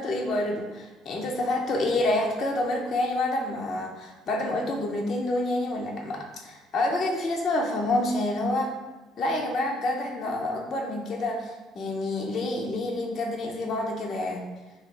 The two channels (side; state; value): both; normal; correlation 0.67